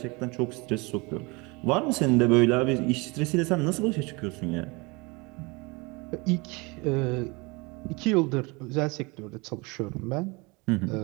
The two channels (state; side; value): quieter; left; 26.9 dB